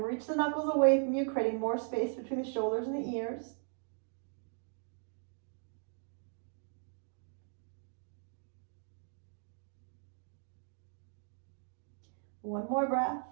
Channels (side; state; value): left; silent; 52 dB below the other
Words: reach the knuckles away from you, creating more space between the shoulders and the ears. One more breath.